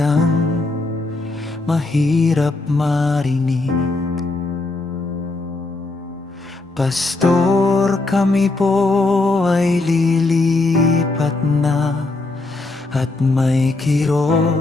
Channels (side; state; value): right; quieter; 3.1 dB